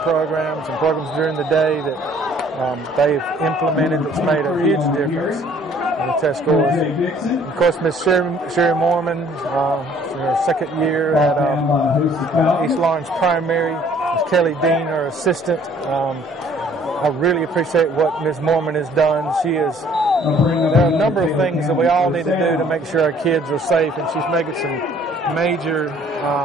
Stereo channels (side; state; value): both; normal; correlation 0.58